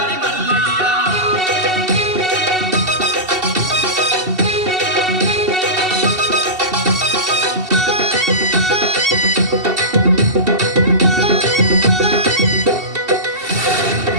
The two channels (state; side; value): late; left; 2.7 ms